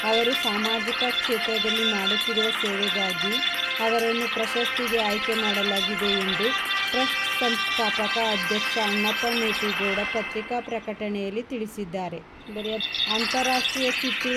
ಅವರು ಸಾಮಾಜಿಕ ಕ್ಷೇತ್ರದಲ್ಲಿ ಮಾಡುತ್ತಿರುವ ಸೇವೆಗಾಗಿ ಅವರನ್ನು ಪ್ರಶಸ್ತಿಗೆ ಆಯ್ಕೆ ಮಾಡಲಾಗಿದೆ ಎಂದು ಟ್ರಸ್ಟ್ ಸಂಸ್ಥಾಪಕ ಅಧ್ಯಕ್ಷ ಅಣ್ಣಪ್ಪ ಮೇಟಿಗೌಡ ಪತ್ರಿಕಾ ಪ್ರಕಟಣೆಯಲ್ಲಿ ತಿಳಿಸಿದ್ದಾರೆ. ಅಂತಾರಾಷ್ಟ್ರೀಯ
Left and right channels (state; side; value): identical; both; correlation 1.00